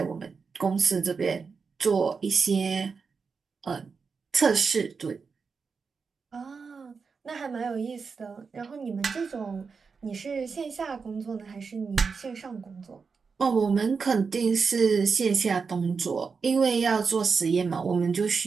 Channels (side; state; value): left; quieter; 5.2 dB